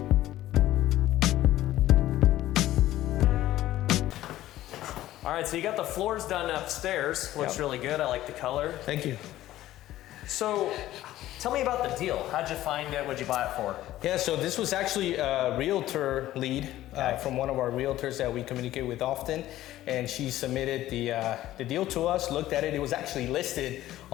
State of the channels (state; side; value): quieter; right; 14.5 dB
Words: All right, so you got the floors done upstairs. Looks Yep. really good. I like the color. Thank you. So tell me about the deal. How'd you find it? What'd you buy it for? Yeah, so this was actually a realtor lead Okay. from one of our realtors that we communicate with often, and she submitted the deal to us, looked at it. It was actually listed